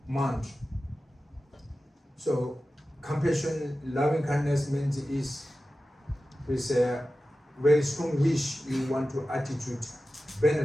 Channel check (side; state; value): both; normal; correlation 0.94